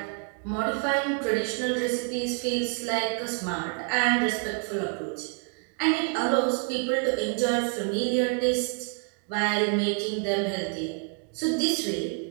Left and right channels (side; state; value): left; quieter; 37.1 dB